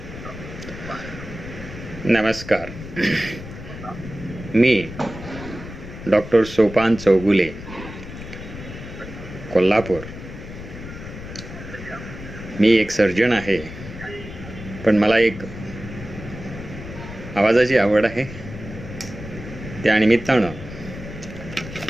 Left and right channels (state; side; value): noise; left; rumble, 12 dB below the sound